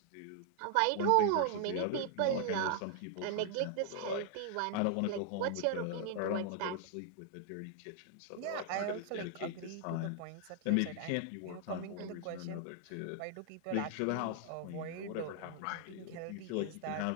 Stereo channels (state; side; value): different; both; correlation 0.00